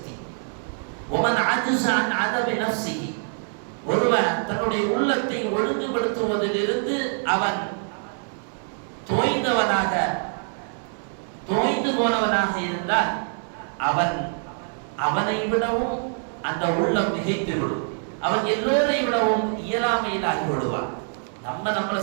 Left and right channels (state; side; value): silent; left; 62 dB below the other